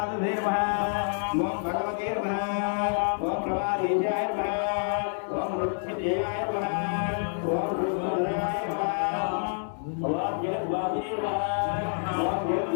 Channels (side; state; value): right; silent; digital silence